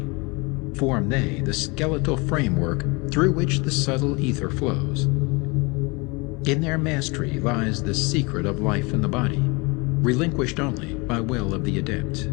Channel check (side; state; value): right; quieter; 27.6 dB